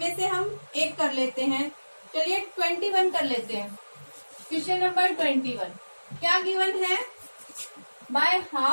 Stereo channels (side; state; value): both; inverted; correlation -1.00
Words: से हम एक कर लेते हैं। चलिए 21 कर लेते हैं। क्वेश्चन नंबर 21 क्या गिवन है? By